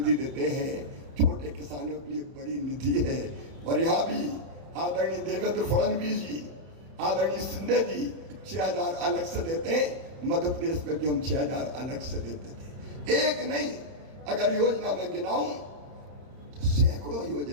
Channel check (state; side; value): late; left; 31 ms